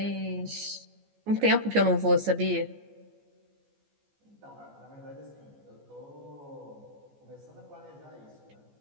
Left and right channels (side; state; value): left; late; 14 ms